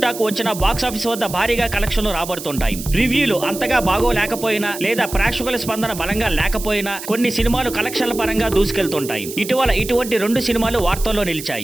టాక్ వచ్చిన బాక్స్ ఆఫీస్ వద్ద భారీగా కలెక్షన్లు రాబడుతుంటాయి. రివ్యూలు అంతగా బాగోలేకపోయినా లేదా ప్రేక్షకుల స్పందన బలంగా లేకపోయినా కొన్ని సినిమాలు కలెక్షన్ల పరంగా దూసుకెళ్తుంటాయి. ఇటీవల ఇటువంటి 2 సినిమాలు వార్తల్లో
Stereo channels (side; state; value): right; noise; hiss, 11 dB below the sound